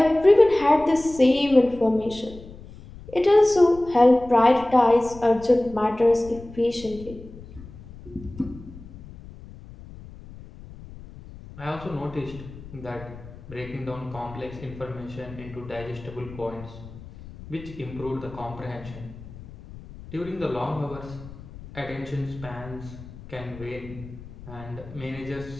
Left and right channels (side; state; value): left; noise; rumble, 16 dB below the sound